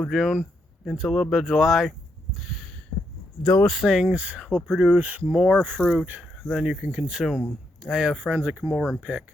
June, into a little bit of July, those things will produce more fruit than you can consume. I have friends that come over and pick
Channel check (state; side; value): normal; both; correlation 0.79